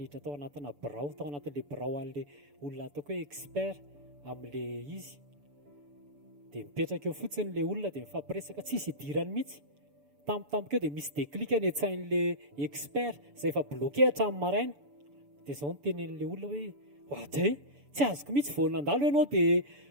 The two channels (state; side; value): late; left; 6.9 ms